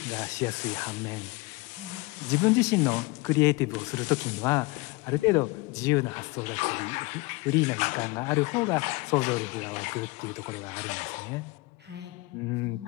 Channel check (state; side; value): quieter; right; 24.1 dB